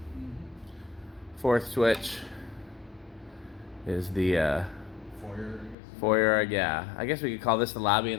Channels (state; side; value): drops out; right; at 5.8 s